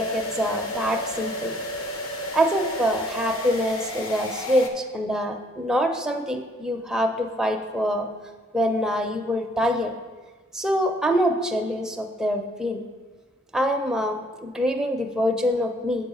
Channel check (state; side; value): normal; both; correlation 0.64